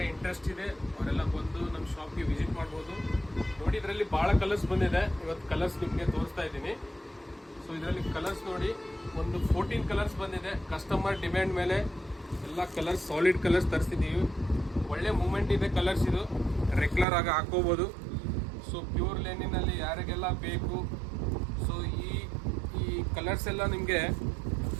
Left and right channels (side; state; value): left; drops out; at 17.1 s